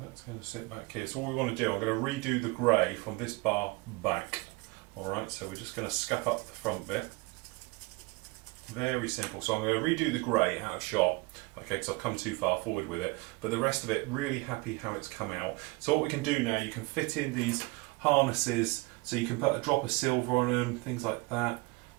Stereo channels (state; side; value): quieter; left; 24.9 dB